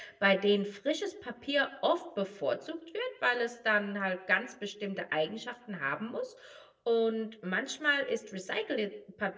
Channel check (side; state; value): both; identical; correlation 1.00